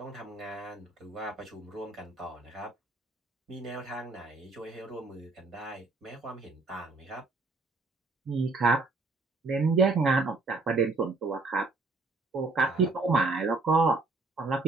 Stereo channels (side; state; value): left; quieter; 3.5 dB